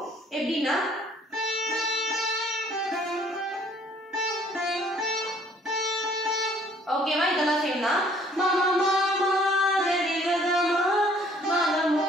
எப்படின்னா ஓகேவா? இதெல்லாம் சேம் தான். மாமா மாமா கரிகமா மகமா.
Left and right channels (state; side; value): normal; both; correlation 0.59